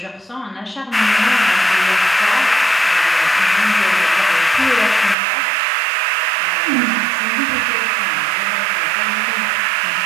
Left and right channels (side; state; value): left; drops out; at 5.2 s